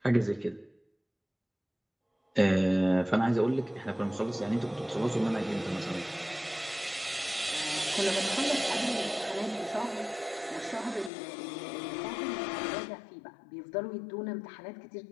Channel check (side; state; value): right; drops out; at 11.1 s